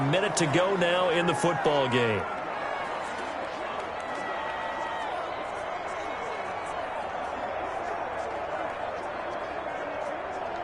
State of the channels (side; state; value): both; identical; correlation 1.00